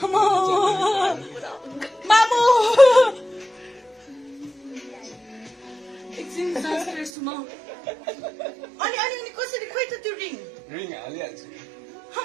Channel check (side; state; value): left; drops out; at 7.1 s